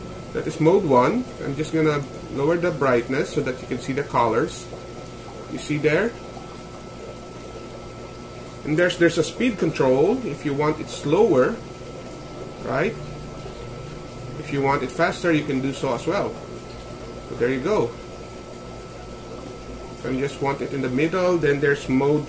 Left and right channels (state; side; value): identical; both; correlation 1.00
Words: That is mode 1. I'm just gonna lower the brightness so that you can see the colors. You see there? And there's a speed control if you want it slower, right? If you want it faster, you can do so as well. So there you go. So you just want it in the middle. Then there's mode